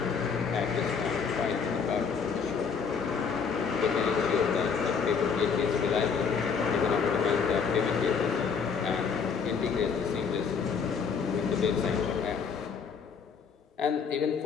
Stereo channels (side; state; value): right; quieter; 6.0 dB